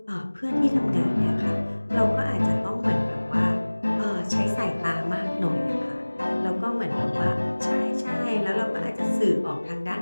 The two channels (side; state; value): both; inverted; correlation -1.00